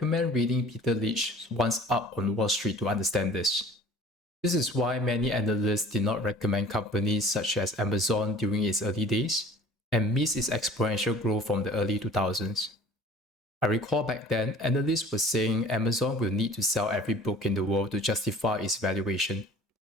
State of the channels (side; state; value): both; normal; correlation 0.47